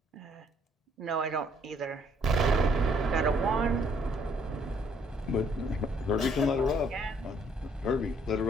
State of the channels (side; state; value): both; normal; correlation 0.65